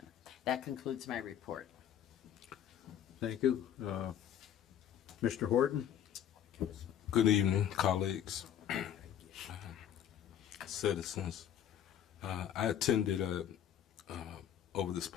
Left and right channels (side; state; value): right; quieter; 9.8 dB